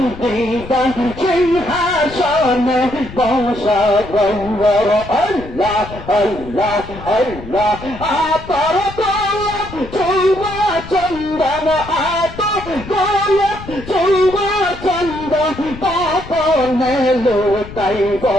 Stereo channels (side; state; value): left; noise; rumble, 14 dB below the sound